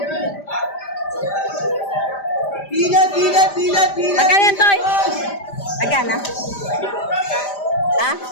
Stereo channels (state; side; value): late; right; 5.0 ms